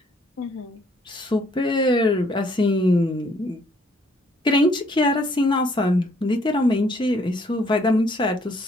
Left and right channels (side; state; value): both; normal; correlation 0.65